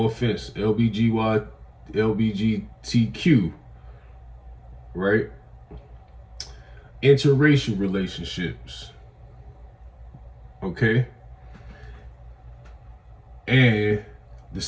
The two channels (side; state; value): both; identical; correlation 1.00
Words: offense, LBGTQ, right? Interracial relationships, okay, and the